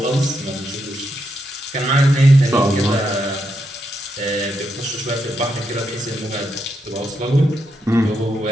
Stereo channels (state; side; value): normal; both; correlation 0.82